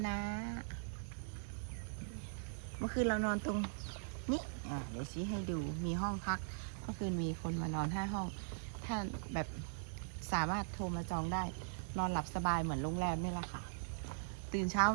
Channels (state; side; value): silent; left; digital silence